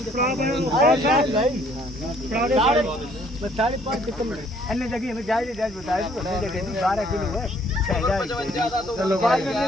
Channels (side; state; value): both; normal; correlation 0.62